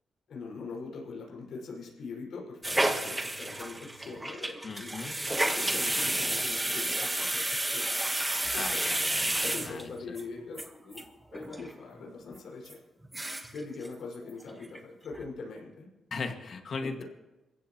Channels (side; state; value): both; normal; correlation 0.94